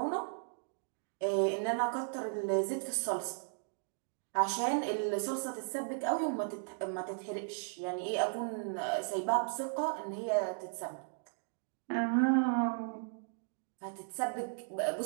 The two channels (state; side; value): silent; left; digital silence